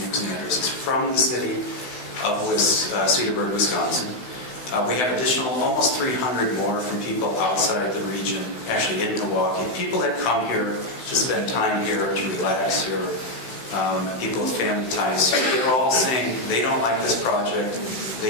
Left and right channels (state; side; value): late; right; 16 ms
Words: using addresses from the city of Cedarburg, Wisconsin. We have additional almost 300 more from people outside the region, actually in Milwaukee. People that come here to spend time here, to relax here, people with family ties. They're all saying they don't like this project,